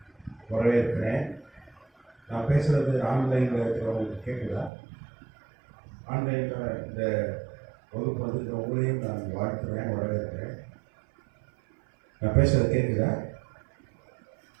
வரவேற்கிறேன். நான் பேசுகிறது ஆன்லைனில் இருக்கிறவங்களுக்கு கேட்குதா? ஆன்லைனில் இந்த வகுப்பு வந்துருக்க உங்களையும் நான் வாழ்த்துக்கிறேன், வரவேற்கிறேன். நான் பேசுகிறது கேட்குதா?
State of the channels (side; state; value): left; drops out; at 4.7 s